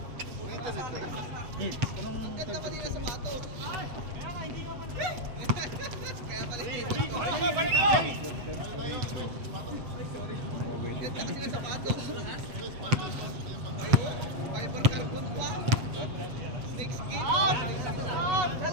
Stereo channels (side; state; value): left; late; 8.0 ms